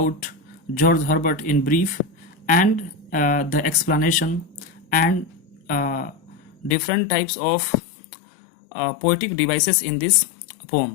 George Herbert in brief and the explanation and different types of poetic devices in this poem.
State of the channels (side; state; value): right; drops out; at 6.8 s